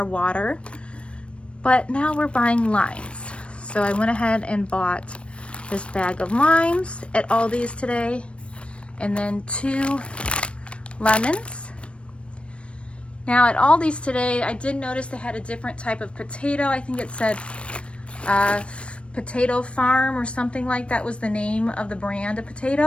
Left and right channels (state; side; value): late; right; 0.060 ms